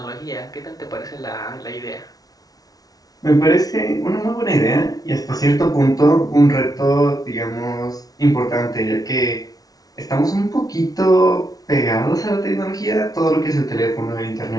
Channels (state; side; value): late; right; 0.18 ms